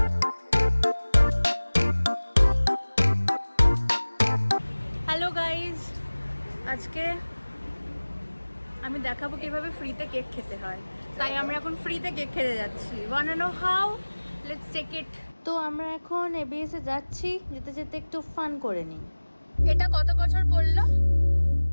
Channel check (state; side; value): inverted; both; correlation -1.00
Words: আজকে আমি দেখাবো কিভাবে ফ্রিতে কেক খেতে হয়। তাই আমরা এখন ফ্রিতে কেক খেতে যাচ্ছি। Want to know how? Let's take it. তো আমরা এখন এবিএস এ যাচ্ছি, যেতে যেতে একটু ফান করে নিই। এটা কত বছর পড়লো?